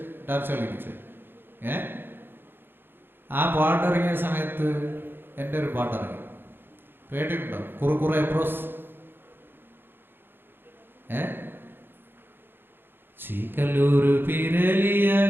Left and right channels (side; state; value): left; late; 0.10 ms